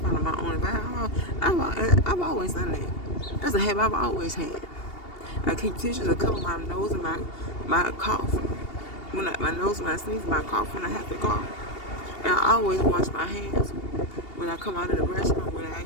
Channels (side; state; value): right; late; 2.8 ms